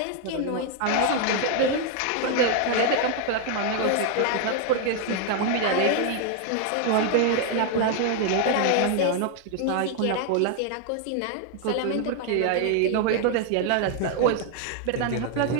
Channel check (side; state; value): both; different; correlation 0.00